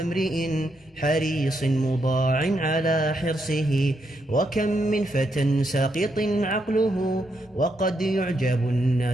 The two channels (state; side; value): normal; both; correlation 0.79